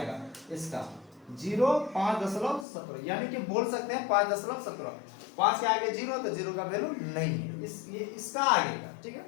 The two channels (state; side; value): drops out; right; at 2.7 s